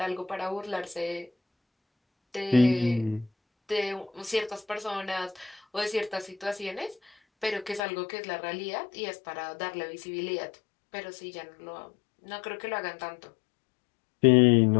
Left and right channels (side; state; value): right; drops out; at 7.8 s